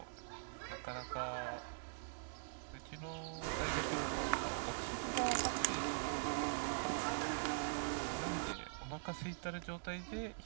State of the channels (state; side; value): silent; left; digital silence